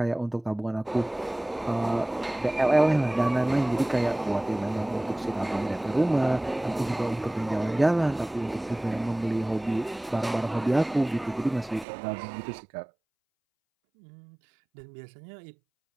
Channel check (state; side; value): drops out; left; at 11.9 s